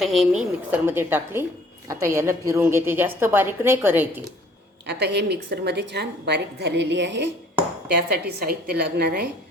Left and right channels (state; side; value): normal; both; correlation 0.56